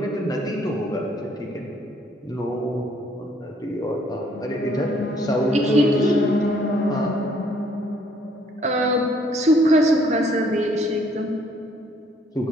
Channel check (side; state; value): both; normal; correlation 0.64